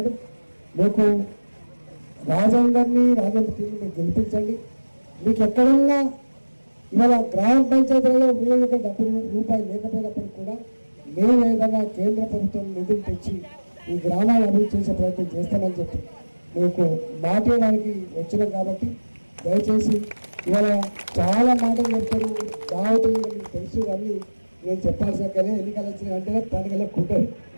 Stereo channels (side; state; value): both; inverted; correlation -1.00